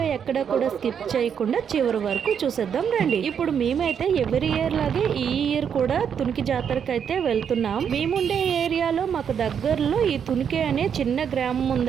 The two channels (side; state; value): left; quieter; 7.7 dB